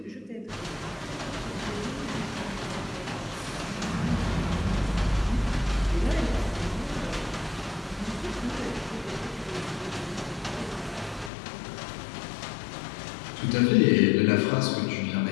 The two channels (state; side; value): drops out; right; at 11.3 s